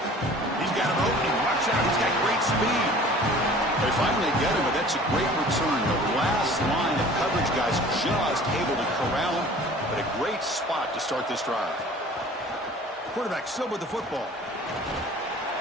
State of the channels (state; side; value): normal; both; correlation 0.47